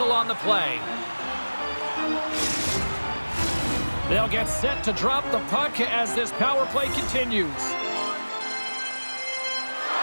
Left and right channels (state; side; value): inverted; both; correlation -1.00